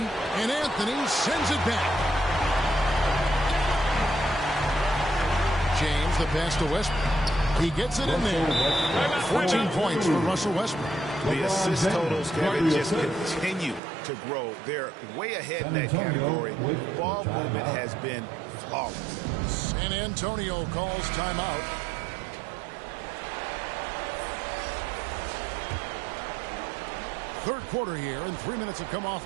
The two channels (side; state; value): left; drops out; at 13.8 s